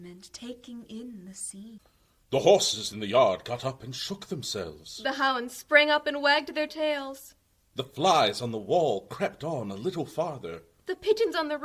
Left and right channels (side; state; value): both; identical; correlation 1.00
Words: taking in the scene. The horses in the yard got up and shook themselves. The hounds sprang up and wagged their tails. The flies on the wall crept on a little farther. The pigeons on the